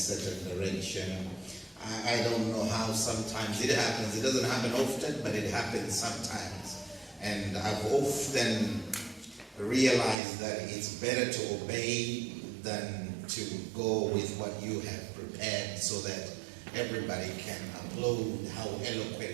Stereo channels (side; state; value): left; drops out; at 10.2 s